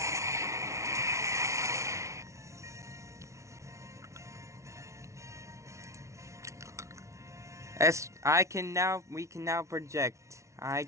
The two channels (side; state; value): left; late; 0.14 ms